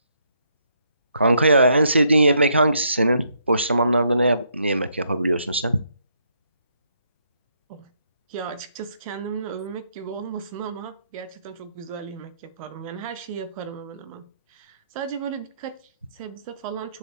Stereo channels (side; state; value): both; inverted; correlation -0.74